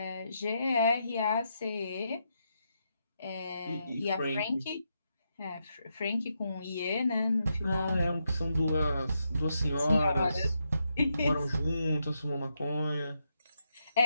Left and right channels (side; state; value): both; inverted; correlation -0.82